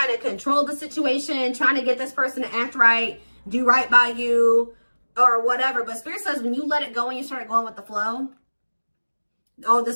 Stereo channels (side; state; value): both; inverted; correlation -1.00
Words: to control the situation, trying to get this person to act right, do right by you, or whatever. But Spirit says when you let it go and you start going with the flow, oh,